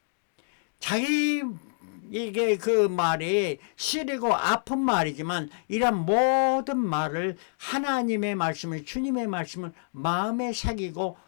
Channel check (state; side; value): silent; right; digital silence